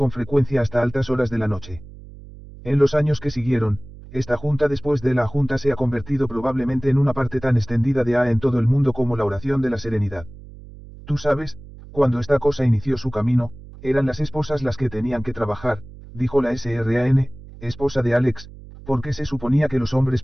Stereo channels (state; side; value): noise; right; hum, 17 dB below the sound